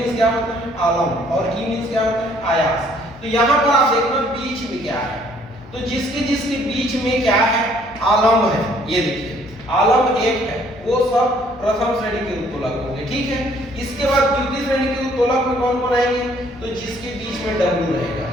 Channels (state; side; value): noise; left; hum, 22 dB below the sound